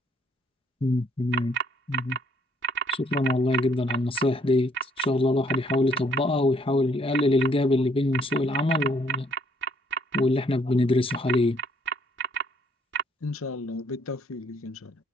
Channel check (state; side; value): normal; both; correlation 0.66